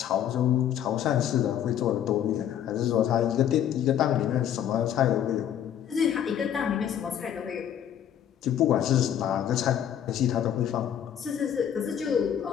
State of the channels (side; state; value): right; quieter; 9.9 dB